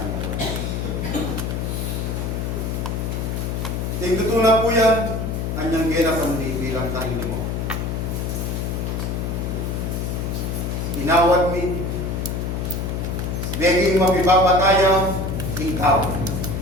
po. Tingtutunan po yan, anyang gena pandi bilang tayo mo. Inawad mi, Beging mapipapataya, ikaw.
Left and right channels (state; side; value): noise; left; hum, 2 dB below the sound